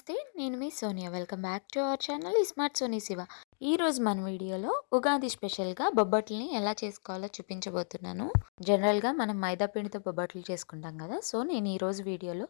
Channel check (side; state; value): right; silent; digital silence